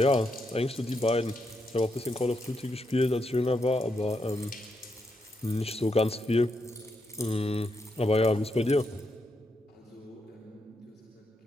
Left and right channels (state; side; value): normal; both; correlation 0.82